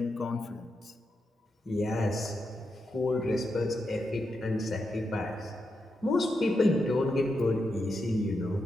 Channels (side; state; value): both; normal; correlation 0.85